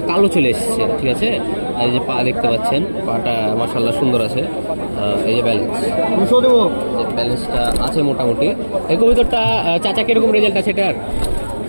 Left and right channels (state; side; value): inverted; both; correlation -1.00